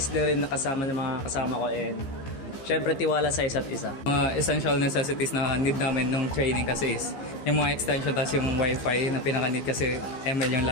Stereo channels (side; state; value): right; late; 15 ms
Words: na rin nakasama ng mga kasama ko and syempre tiwala sa isa't isa. Mga essential necessities na need namin nung training kasi is yung mga extension tapos yung wifi na pinaka-need kasi ML yung